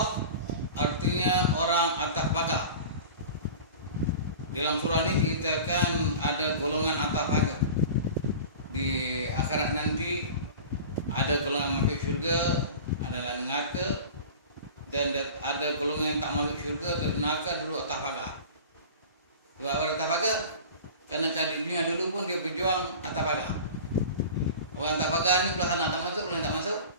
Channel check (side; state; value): both; inverted; correlation -0.37